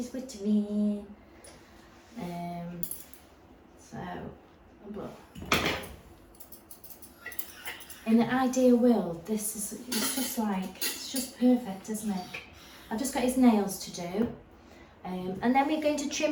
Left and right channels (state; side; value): identical; both; correlation 1.00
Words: wittering. But in the ideal world, it's just perfect, isn't it? I've just got his nails to do, and then we're going to